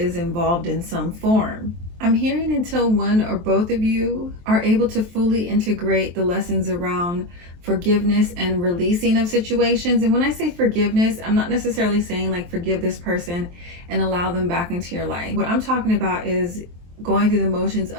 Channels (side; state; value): left; late; 23 ms